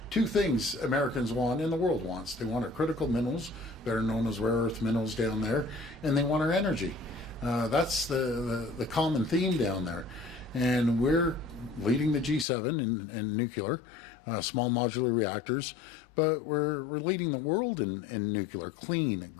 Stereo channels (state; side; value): drops out; right; at 12.5 s